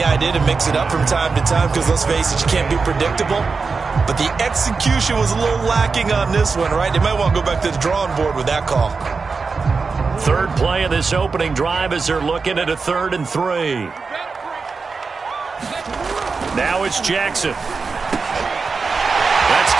idea to mix it up from time to time because, let's face it, you can't be predictable. But the execution was a little lacking on this one, right? They might want to go back to the drawing board with that call. 3rd play of this opening drive as they're looking at a 3rd and 3. Now it's Jackson. That's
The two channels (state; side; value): quieter; left; 4.7 dB